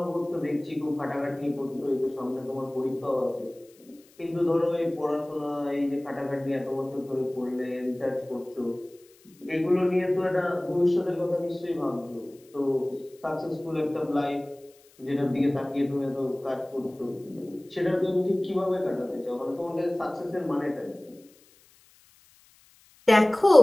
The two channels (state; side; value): noise; left; hiss, 29 dB below the sound